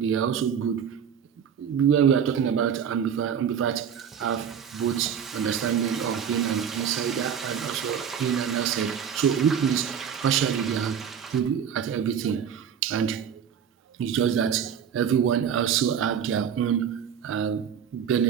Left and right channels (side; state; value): left; quieter; 8.0 dB